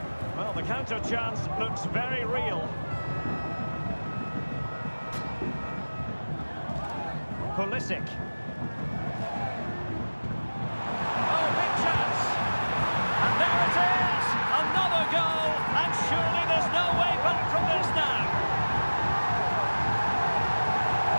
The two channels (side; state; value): both; inverted; correlation -1.00